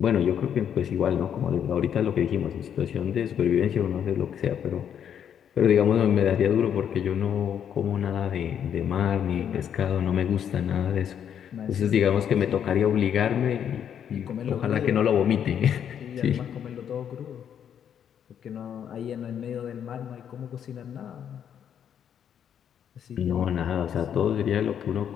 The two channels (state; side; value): quieter; right; 8.8 dB